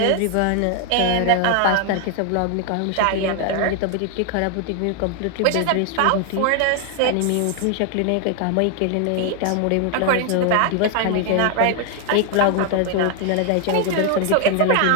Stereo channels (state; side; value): different; both; correlation 0.00